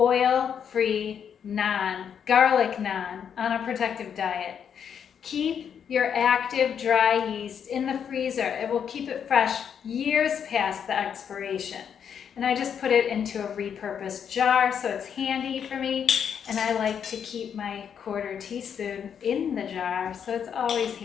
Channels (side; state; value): right; quieter; 7.9 dB